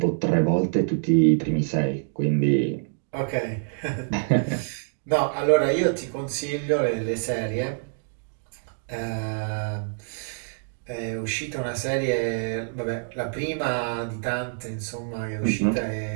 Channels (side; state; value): left; silent; digital silence